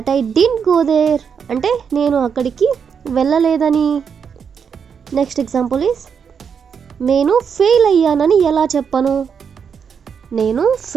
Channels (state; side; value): quieter; left; 6.8 dB